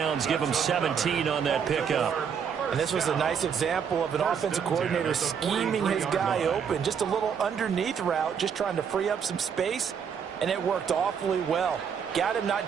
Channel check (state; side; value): quieter; left; 7.2 dB